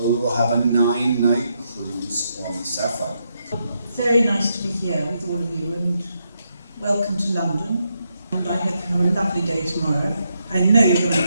we will have a 9-night cruise on the SAPPHIRE. Very nice to be here with all of you, and welcome to London. And I hope you have a lovely day tomorrow. I know you're going to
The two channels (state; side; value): inverted; both; correlation -0.81